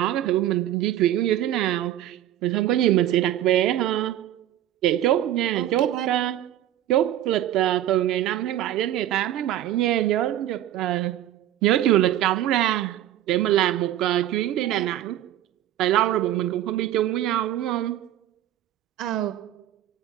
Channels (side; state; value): left; quieter; 12.6 dB